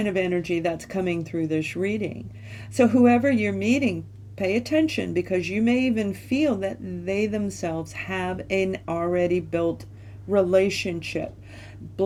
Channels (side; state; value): both; identical; correlation 1.00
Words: of energy that's coming through this reading. So whoever you're meeting, pay attention because you may even feel that they themselves have an already built relationship,